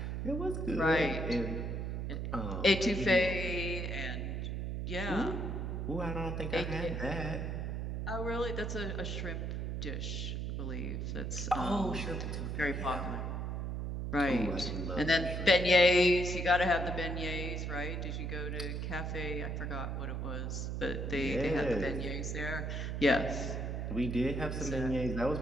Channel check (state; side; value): noise; right; hum, 3 dB below the sound